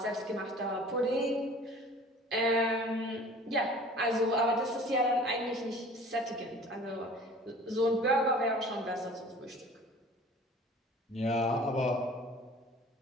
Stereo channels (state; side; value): normal; both; correlation 0.46